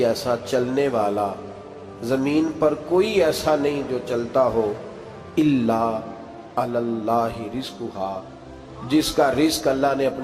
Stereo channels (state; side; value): identical; both; correlation 1.00